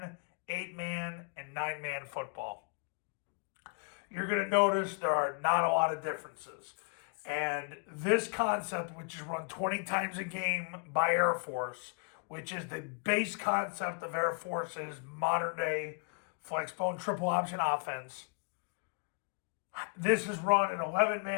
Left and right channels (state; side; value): quieter; right; 34.3 dB